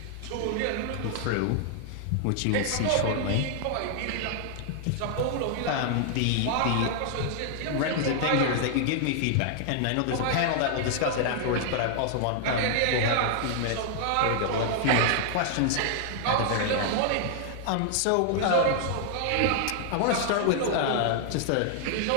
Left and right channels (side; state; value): both; different; correlation 0.00